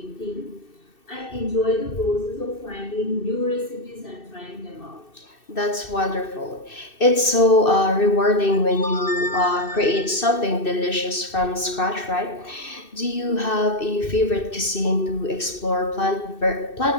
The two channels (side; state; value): right; late; 2.6 ms